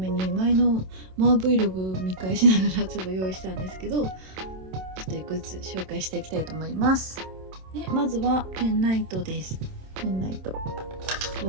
に前のマー Vlog 見返しながらちょっと用意したんですけど、ちょっといくつ紹介していきたいと思います。でまずはペンライトです。ペンライト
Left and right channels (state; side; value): late; left; 27 ms